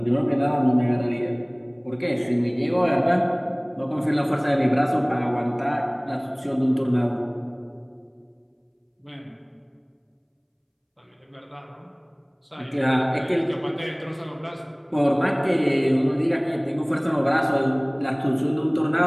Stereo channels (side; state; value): both; identical; correlation 1.00